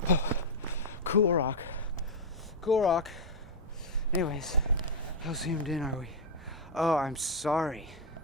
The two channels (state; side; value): normal; both; correlation -0.01